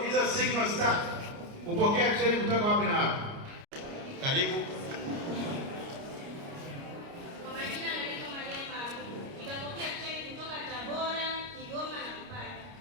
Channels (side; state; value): left; late; 29 ms